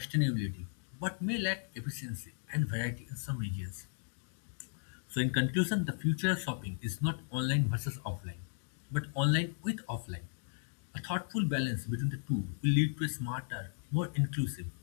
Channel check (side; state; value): right; silent; 54 dB below the other